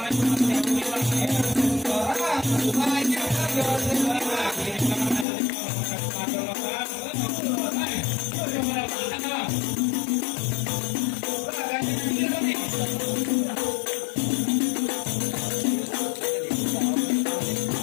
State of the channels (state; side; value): drops out; right; at 5.2 s